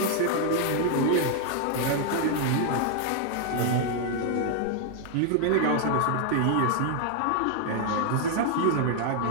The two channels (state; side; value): different; both; correlation 0.00